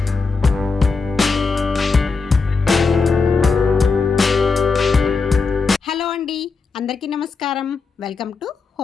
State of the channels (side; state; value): right; quieter; 4.5 dB